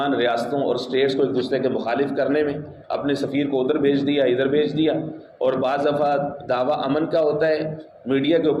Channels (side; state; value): both; identical; correlation 1.00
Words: ریاستوں اور اسٹیٹس کو ایک دوسرے کے مخالف کرنے میں، اپنے سفیر کو ادھر بھیج دیا ادھر بھیج دیا، اور بعض دفعہ دعویٰ امن کا ہوتا ہے، میڈیا کے